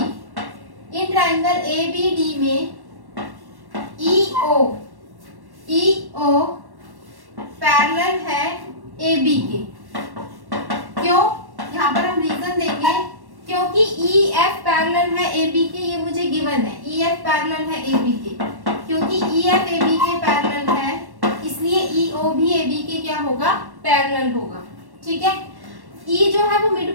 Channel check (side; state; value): left; late; 1.1 ms